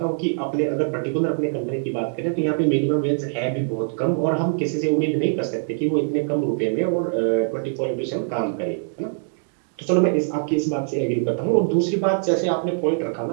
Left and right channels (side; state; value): left; silent; digital silence